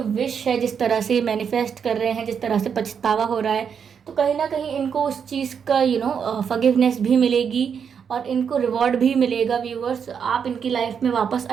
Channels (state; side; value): quieter; left; 7.1 dB